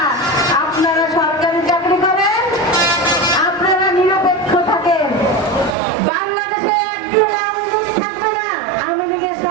আপনারা সরকারি চাকরি করেন, আপনারা নিরপেক্ষ থাকেন। বাংলাদেশে একদিন আওয়ামী লীগ থাকবে না, আওয়ামী লীগের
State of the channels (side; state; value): left; drops out; at 5.8 s